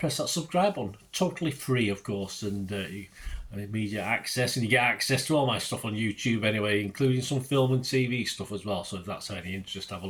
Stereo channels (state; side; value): identical; both; correlation 1.00